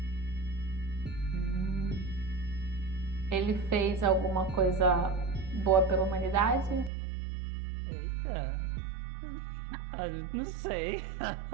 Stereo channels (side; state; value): left; drops out; at 6.9 s